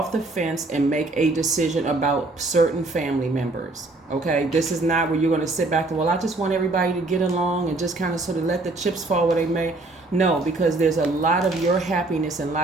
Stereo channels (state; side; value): quieter; left; 3.1 dB